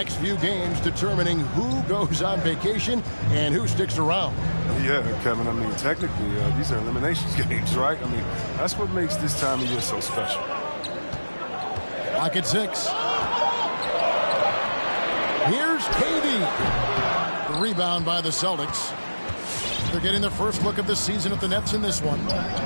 few games determining who goes on vacation and who sticks around. Yeah, Kevin, I mean, technically, these are eliminations games, right? I mean, that's what makes this time of year so special. Clock at 6. Here's KD. The rebound by the Celtics. They're getting their first look of the season at the Nets in this one.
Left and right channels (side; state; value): both; inverted; correlation -1.00